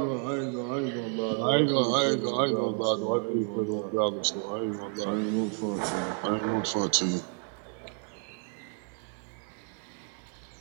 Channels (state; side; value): quieter; left; 39.7 dB